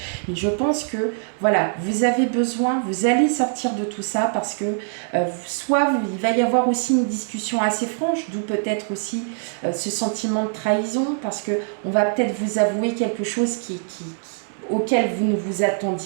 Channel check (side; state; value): left; silent; digital silence